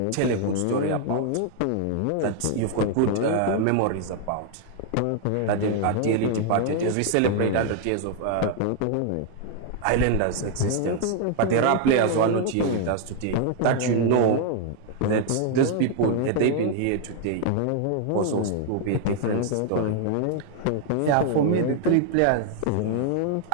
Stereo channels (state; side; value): different; both; correlation 0.00